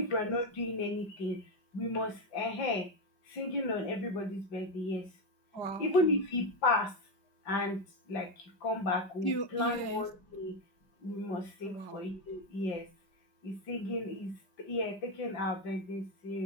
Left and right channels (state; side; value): late; right; 5.1 ms